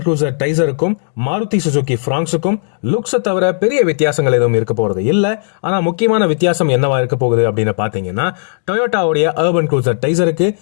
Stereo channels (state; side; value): silent; right; digital silence